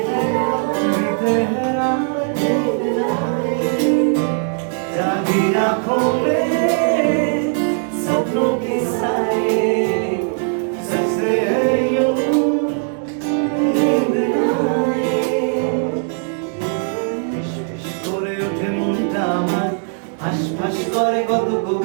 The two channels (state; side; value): silent; left; 55 dB below the other